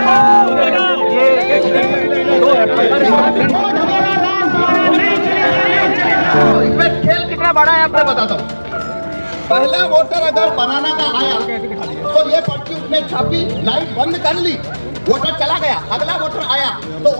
इसमें खेल कितना बड़ा है आपको बताता हूँ। पहला वोटर अगर बनाना का आया तो ये पर्ची उसने छापी, लाइट बंद कर ली, वोटर चला गया। अगला वोटर आया तो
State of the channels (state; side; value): inverted; both; correlation -1.00